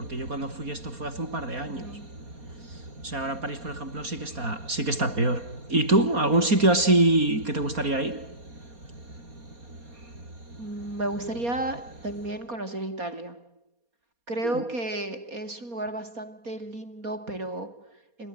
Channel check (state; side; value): late; left; 4.2 ms